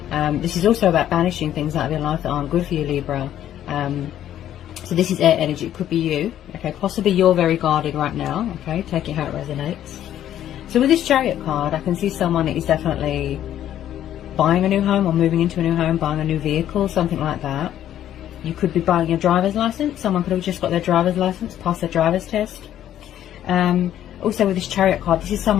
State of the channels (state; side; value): quieter; right; 11.4 dB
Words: This is also about banishing things out of your life that aren't good for you, Libra. So this is air energy. It could be you, okay? Possibly you're very guarded right now, okay? Take it how it resonates. So with this Chariot card, I can see someone that is definitely buying a new home or moving into a new home, buying a new vehicle, something like that. You could be buying your driver's license. Someone could have just got their driver's license, passed their driver's test. Also with this Chariot card, this is